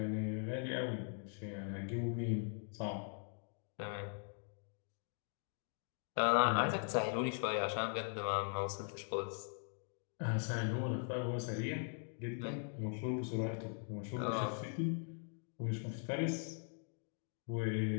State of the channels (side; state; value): right; silent; 51 dB below the other